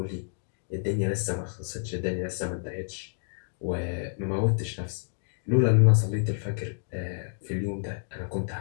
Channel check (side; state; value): right; silent; digital silence